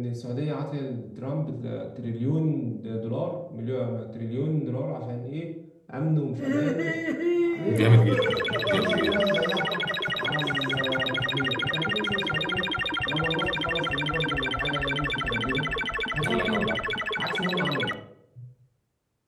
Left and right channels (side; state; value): both; identical; correlation 1.00